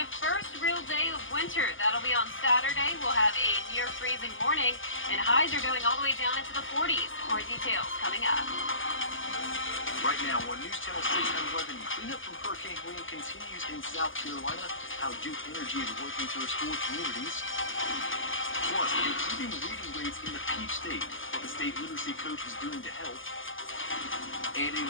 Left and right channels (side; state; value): right; late; 0.58 ms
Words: first real day of winter. That'll be on Saturday. We'll have a near-freezing morning, and highs are going all the way down into the 40s. More details coming up. Right now on News Channel 6 and 11, cleanup from Hurricane Helene continues in South Carolina, how Duke Energy is working to restore communities. Plus, improving reading rates in the Peach State, what the state literacy coach is doing to help. And a